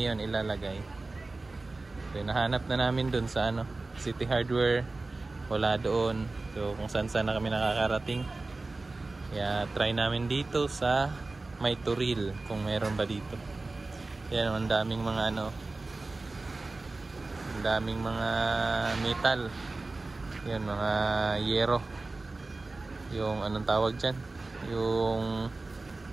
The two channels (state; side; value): quieter; left; 3.3 dB